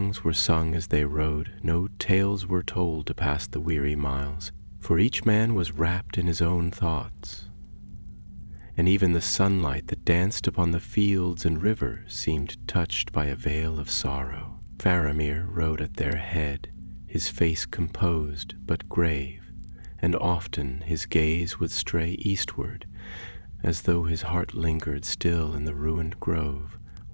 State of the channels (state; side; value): inverted; both; correlation -1.00